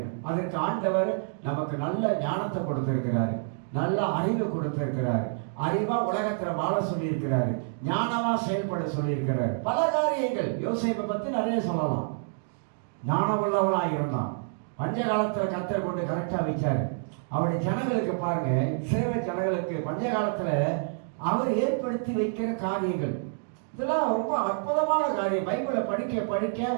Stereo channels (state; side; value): silent; left; digital silence